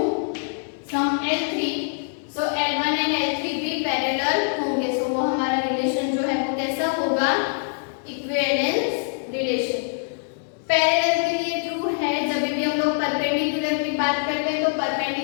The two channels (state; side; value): silent; right; 63 dB below the other